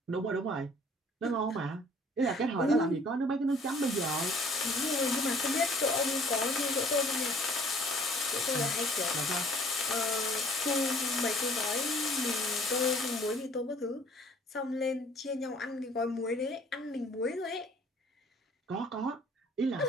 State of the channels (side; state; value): both; normal; correlation 0.55